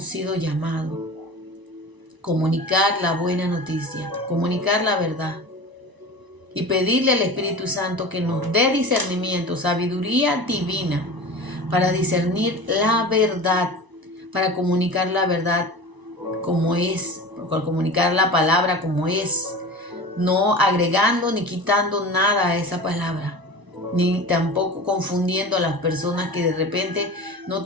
sido llamados. Comunicar la buena noticia, comunicar la verdad y pedirle al Espíritu Santo que nos dé discernimiento, sabiduría divina para discernir la verdad, para comunicar la verdad como es, para comunicar la palabra como es, no agregando ni quitando nada a esa palabra, ni tampoco confundiendo a las personas que de repente no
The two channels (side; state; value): left; late; 1.0 ms